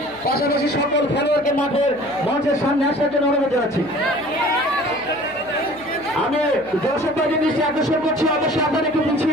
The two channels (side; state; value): left; noise; hum, 26 dB below the sound